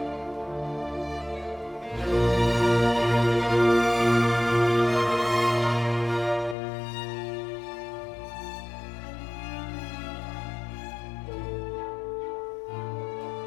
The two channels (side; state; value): right; drops out; at 6.6 s